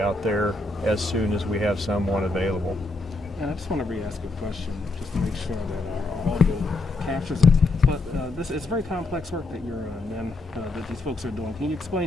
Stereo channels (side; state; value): right; quieter; 3.0 dB